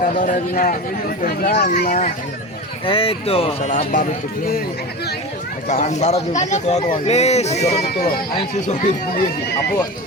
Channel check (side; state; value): both; normal; correlation 0.27